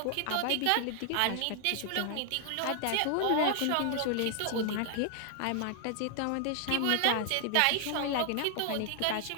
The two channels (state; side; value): different; both; correlation 0.00